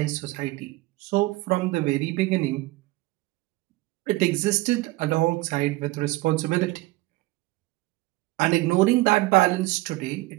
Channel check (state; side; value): quieter; left; 19.8 dB